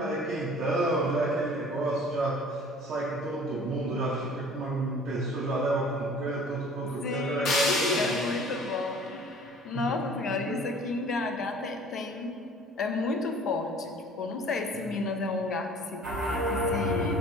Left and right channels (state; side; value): normal; both; correlation 0.49